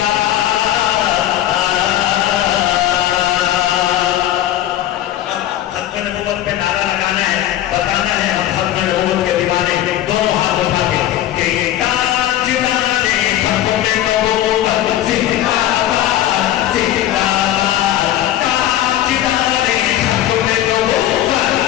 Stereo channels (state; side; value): quieter; right; 12.8 dB